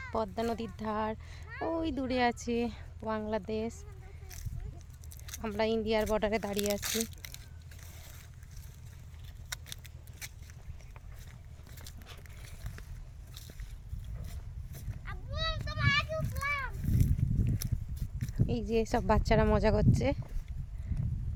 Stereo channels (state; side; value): identical; both; correlation 1.00